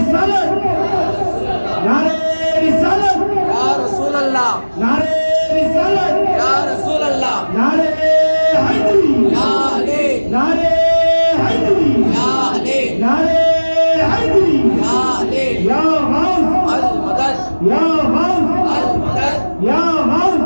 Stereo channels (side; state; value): both; inverted; correlation -1.00